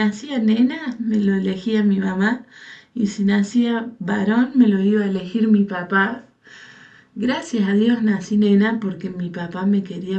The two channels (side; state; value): both; identical; correlation 1.00